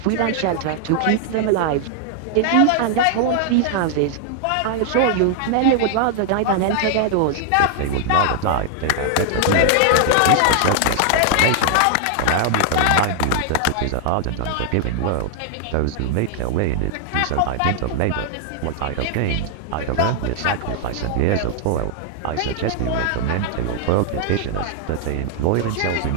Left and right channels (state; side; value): different; both; correlation 0.00